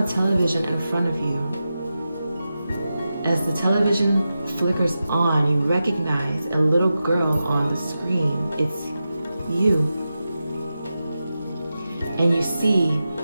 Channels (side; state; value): both; inverted; correlation -0.91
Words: a television in front of you. As the television flickers on, you recognize a little girl on the screen. It's you. And you see